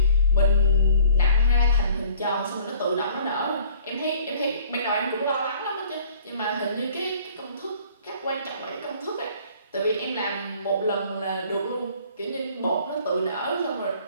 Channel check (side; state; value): both; inverted; correlation -0.54